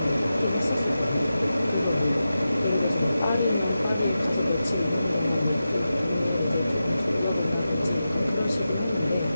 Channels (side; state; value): both; inverted; correlation -0.92